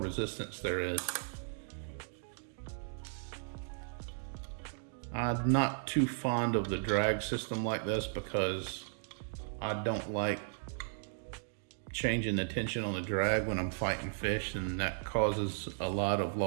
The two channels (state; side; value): silent; left; digital silence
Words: there is. I'm not too fond of the drag system like this because I don't like changing the tension on the drag when I'm fighting fish, and that causes a lot of